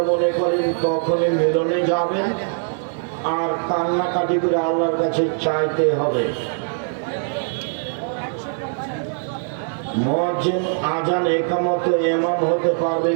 মনে করেন তখনই মিলনে যাবেন, আর কান্নাকাটি করে আল্লাহর কাছে চাইতে হবে। মুয়াজ্জিন আজান একামত ইমাম হতে পারবে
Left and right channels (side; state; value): left; silent; digital silence